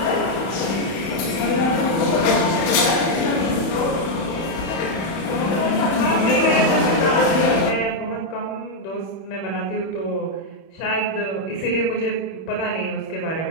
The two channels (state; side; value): late; right; 31 ms